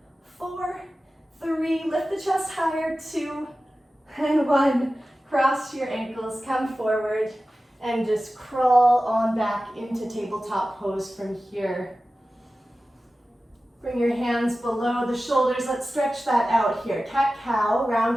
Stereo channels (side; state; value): both; normal; correlation 0.95